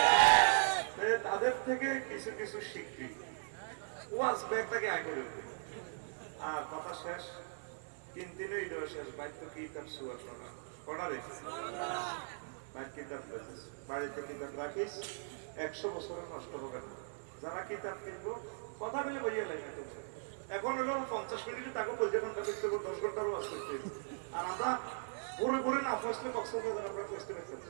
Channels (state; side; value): silent; left; digital silence